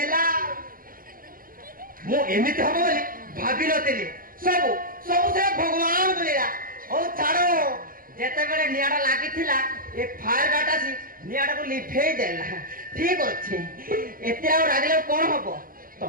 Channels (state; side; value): late; left; 0.41 ms